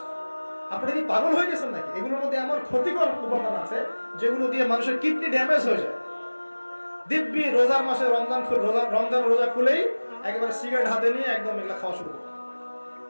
আপনি কি পাগল হয়ে গেছেন নাকি? এগুলোর মধ্যে এমন ক্ষতিকর উপাদান আছে যেগুলো দিয়ে মানুষের কিডনি ড্যামেজ হয়ে যায়। দিব্যি রোজার মাসে রমজান রোজা খুলেই একেবারে সিগারেট হাতে নিয়ে একদম এগুলো খাওয়া শুরু করে।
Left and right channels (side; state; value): both; inverted; correlation -1.00